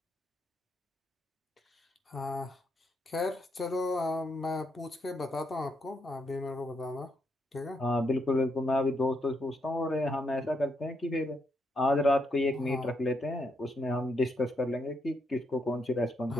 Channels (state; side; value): normal; both; correlation 0.78